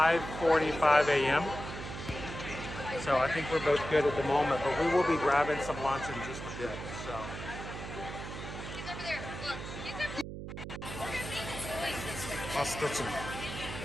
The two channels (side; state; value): right; noise; hum, 8 dB below the sound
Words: a.m. So I think we're both good at the moment, but we will be grabbing some lunch in just a bit. So. I'll stitch them.